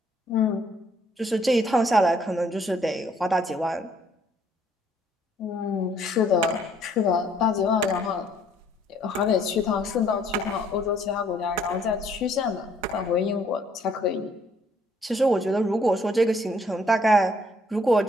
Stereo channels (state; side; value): normal; both; correlation 0.64